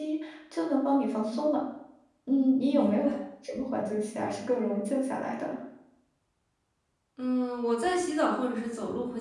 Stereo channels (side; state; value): both; identical; correlation 1.00